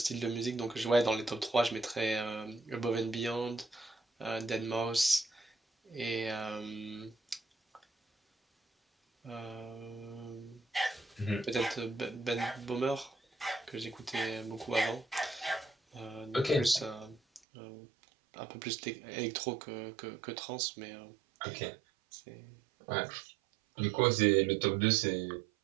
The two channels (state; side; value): drops out; left; at 17.4 s